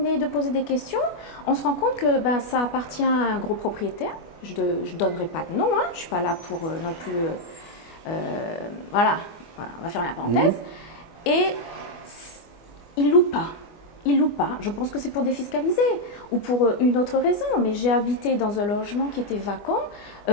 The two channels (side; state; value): right; late; 25 ms